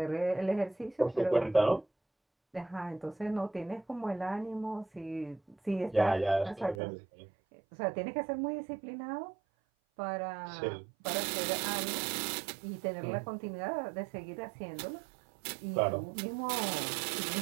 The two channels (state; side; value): drops out; left; at 6.8 s